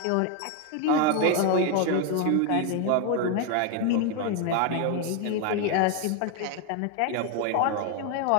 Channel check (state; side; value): different; both; correlation 0.01